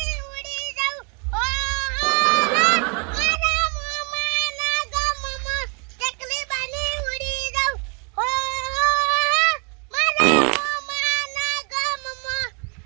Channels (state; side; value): quieter; left; 35.2 dB